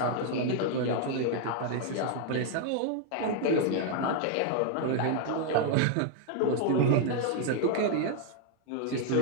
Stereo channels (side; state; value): both; different; correlation 0.00